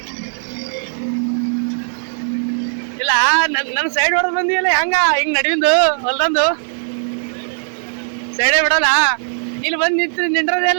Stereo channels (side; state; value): left; silent; 66 dB below the other